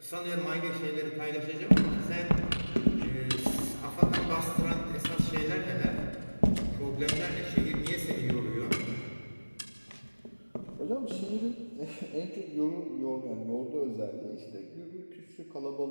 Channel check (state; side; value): inverted; both; correlation -1.00